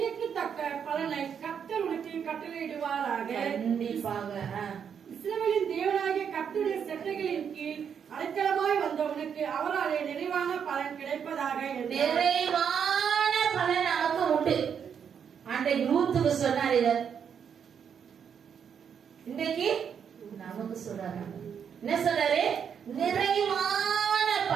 தக்க பலனை கர்த்தர் உனக்கு கட்டளையிடுவாராக. கண்டிப்பாக. இஸ்ரவேலின் தேவனாகிய கர்த்தருடைய சட்டைகளின் கீழ் அடைக்கலமாய் வந்தவனுக்கு அவராலே நிறைவான பலன் கிடைப்பதாக. நிறைவான பலன் நமக்கு உண்டு. அன்றைக்கு ரூத்துக்கு சொன்னார், இவர் இன்றைக்கு நமக்கு சொல்றாரு. என்ன சொல்றாரு? நிறைவான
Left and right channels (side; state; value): left; quieter; 7.6 dB